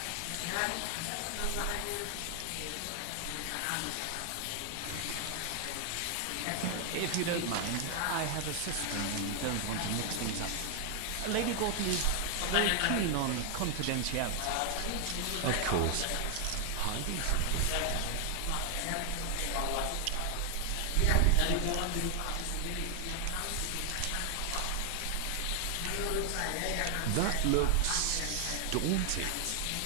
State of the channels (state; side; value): different; both; correlation 0.00